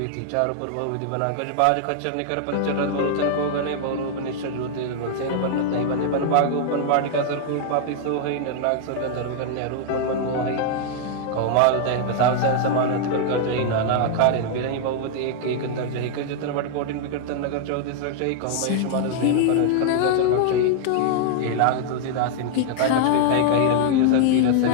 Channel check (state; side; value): different; both; correlation -0.01